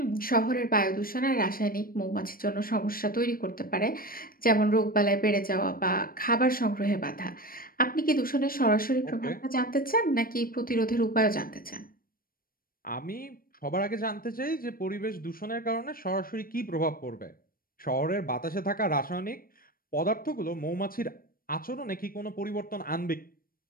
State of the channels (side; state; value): right; late; 0.42 ms